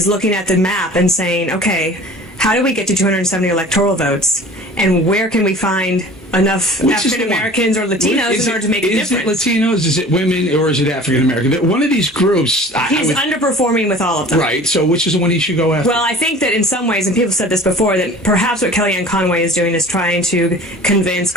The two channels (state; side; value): normal; both; correlation 0.43